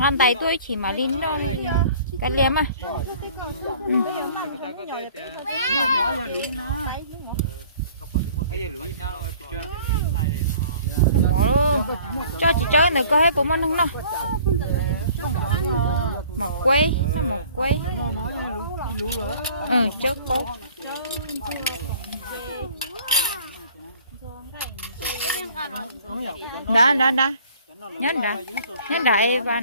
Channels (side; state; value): both; inverted; correlation -0.51